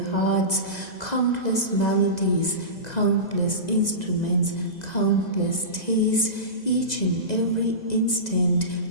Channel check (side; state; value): right; late; 2.0 ms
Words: hearts. Countless melodies, countless instruments, countless tastes, each and every instant.